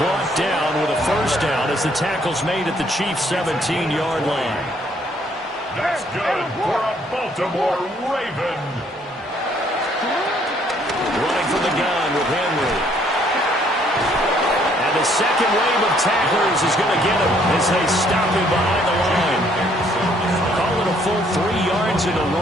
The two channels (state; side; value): normal; both; correlation 0.65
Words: down with a first down as the tackle's made at the Chiefs' 17-yard line. That's good for a Baltimore Raven. Running from the gun with Henry. And the second wave of tacklers is going to get him as they stop him behind the line. Call it a full 3 yards in the